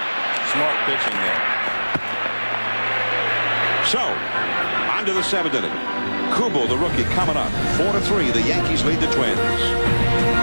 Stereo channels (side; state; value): both; inverted; correlation -1.00